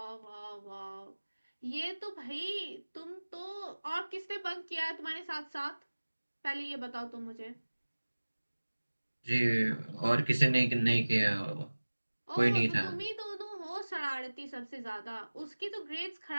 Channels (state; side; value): inverted; both; correlation -1.00